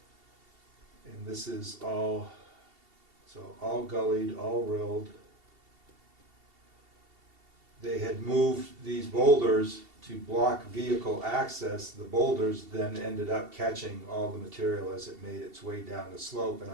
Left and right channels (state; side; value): late; left; 2.7 ms